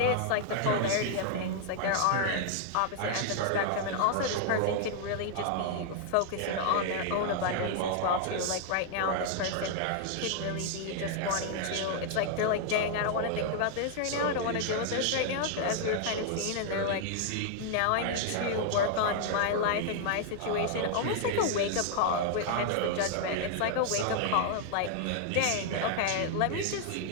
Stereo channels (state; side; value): different; both; correlation 0.00